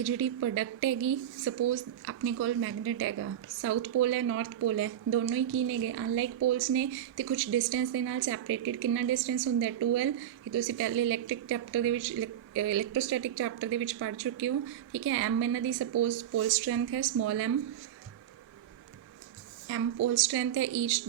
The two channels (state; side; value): quieter; left; 10.8 dB